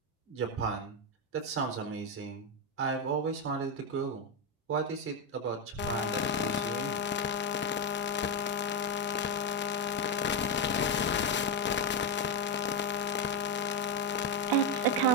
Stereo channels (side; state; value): both; normal; correlation 0.05